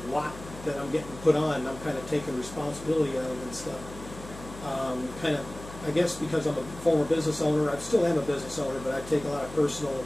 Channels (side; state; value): left; noise; hum, 14 dB below the sound